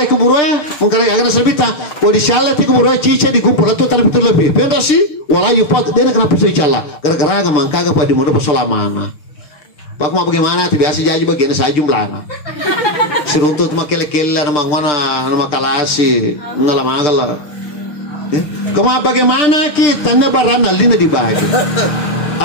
keburu ya, mungkin agak sebita. Kalau disyalai ti keburu cica di kumpul itu tapi betul lebih. Benda sih, walau pot dia na kenapa saya cala? Gara-gara agak mangkaga pada muda pesolamana. Pak mau bagaimana? Biasa jadi bagian saja jumlahnya. Seruntut makil-kil nama nama kalasi, nama magala. Kamu bagaimana kita nebaran alina dibagi?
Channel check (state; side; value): late; right; 6.7 ms